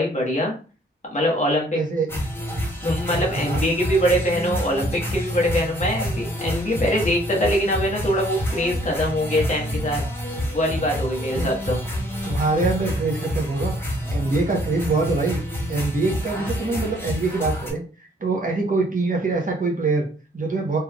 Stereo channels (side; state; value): both; normal; correlation 0.61